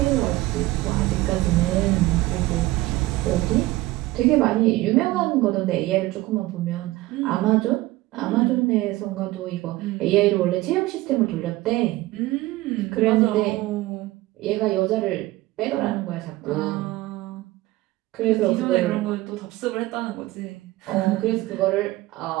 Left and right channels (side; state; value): left; quieter; 18.3 dB